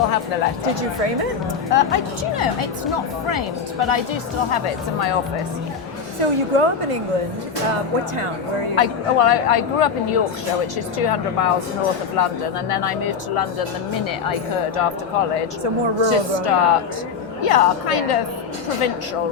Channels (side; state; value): right; quieter; 6.1 dB